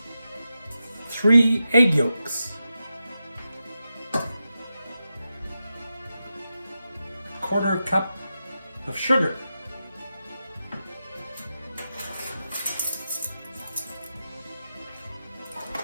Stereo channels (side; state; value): both; inverted; correlation -0.90